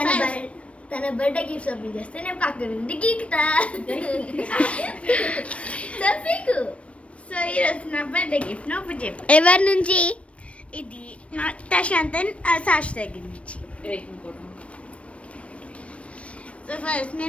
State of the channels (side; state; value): right; late; 0.062 ms